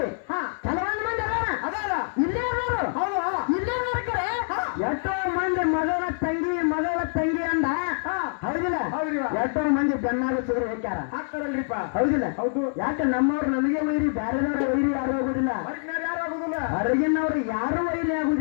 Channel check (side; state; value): right; silent; digital silence